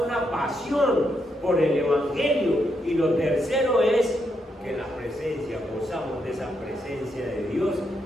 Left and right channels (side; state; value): both; normal; correlation 0.80